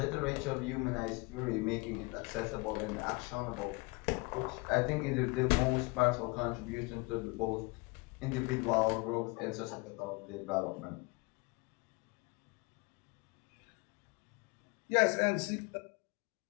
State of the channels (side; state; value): right; quieter; 27.6 dB